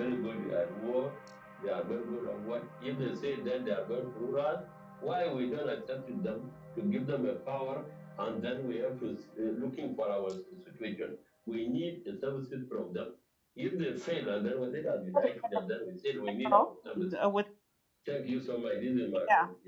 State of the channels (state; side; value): identical; both; correlation 1.00